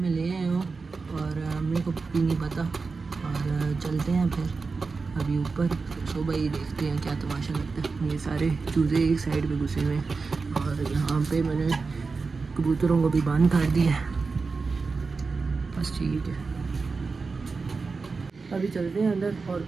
لے آئے ہوں اور امی کو بھی نہیں پتا. اور چلتے ہیں پھر ابھی اوپر. صبح ہی دیکھتے ہیں کیا تماشا لگتا ہے. یہ سارے چوزے ایک سائڈ پہ گھسے ہوئے ہیں، اور یہاں پہ میں نے کبوتروں کو بھی بند کر دیا ہے. بس ٹھیک ہے، ابھی چلتے ہیں اندر، اور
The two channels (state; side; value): quieter; left; 4.4 dB